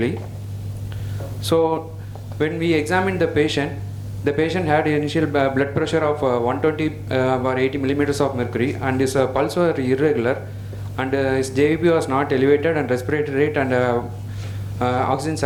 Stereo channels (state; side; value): identical; both; correlation 1.00